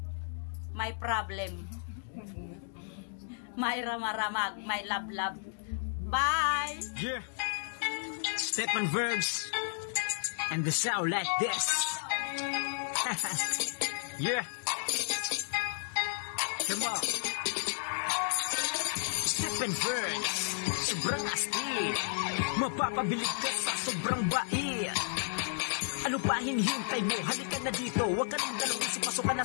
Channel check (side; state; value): right; silent; digital silence